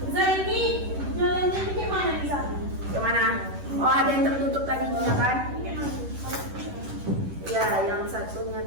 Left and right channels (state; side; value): late; left; 11 ms